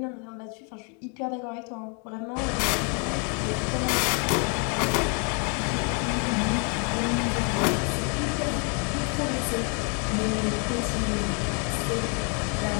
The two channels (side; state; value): right; quieter; 37.9 dB